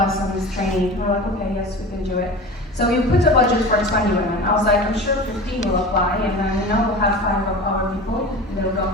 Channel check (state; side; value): normal; both; correlation 0.34